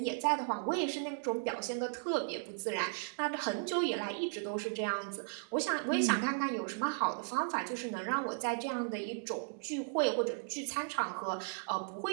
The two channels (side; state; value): left; silent; digital silence